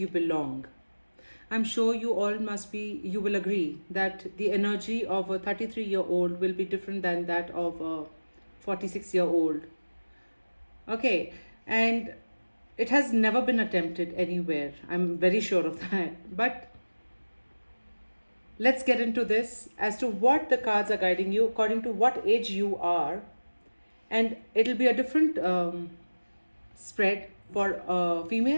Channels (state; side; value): inverted; both; correlation -1.00